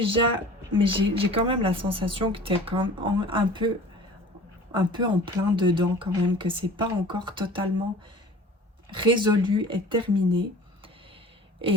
mais j'ai quand même la sensation que tu es quand même un peu en plein dedans quand même, que c'est pas encore totalement résolu et terminé.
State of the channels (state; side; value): normal; both; correlation 0.44